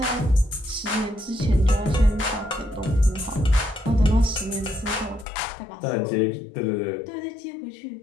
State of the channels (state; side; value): drops out; right; at 5.2 s